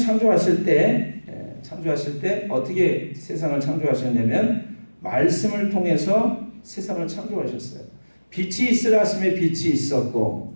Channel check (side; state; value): both; inverted; correlation -1.00